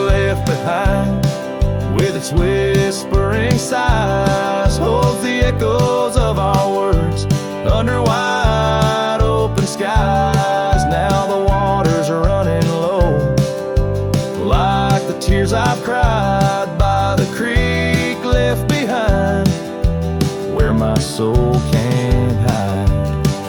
behind, with its whispering sighs, holds the echoes of our words under wide open skies. Now the waters are running low, like the tears I've cried by the creek left behind, where my soul can't hide.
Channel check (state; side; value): identical; both; correlation 1.00